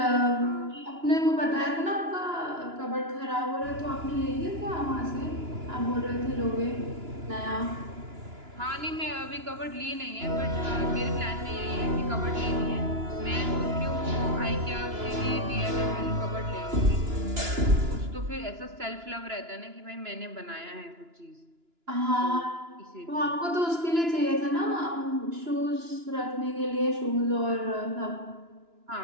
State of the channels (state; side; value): late; left; 2.9 ms